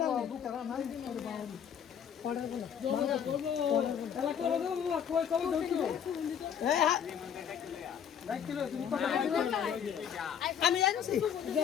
আমি জানিছি দে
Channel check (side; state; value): right; quieter; 8.3 dB